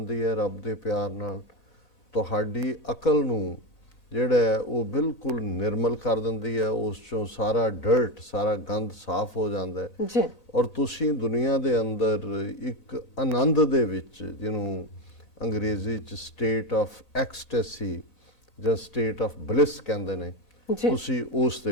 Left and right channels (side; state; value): right; late; 1.8 ms